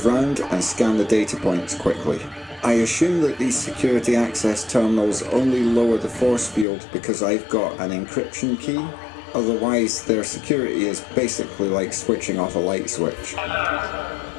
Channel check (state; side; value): drops out; right; at 6.7 s